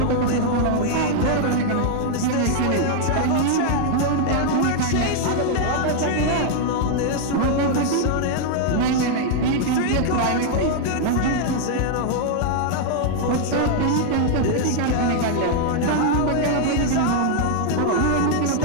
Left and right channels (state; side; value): different; both; correlation 0.00